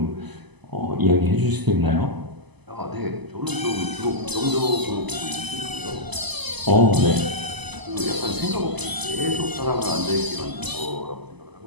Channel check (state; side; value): late; left; 0.99 ms